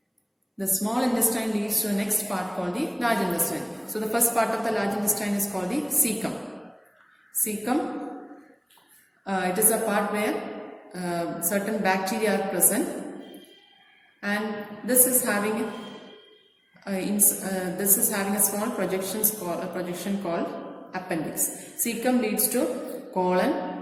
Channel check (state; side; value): identical; both; correlation 1.00